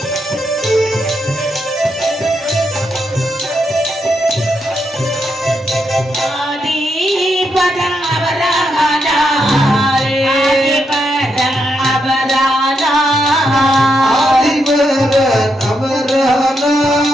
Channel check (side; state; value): both; normal; correlation 0.81